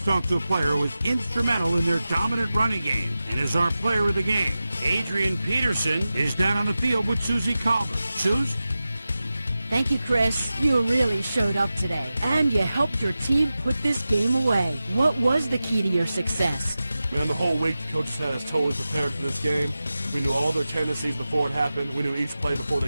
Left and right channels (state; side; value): inverted; both; correlation -0.94